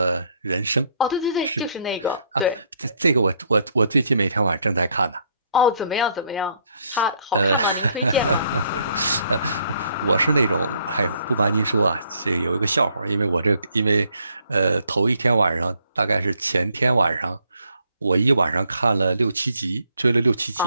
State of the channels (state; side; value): inverted; both; correlation -0.68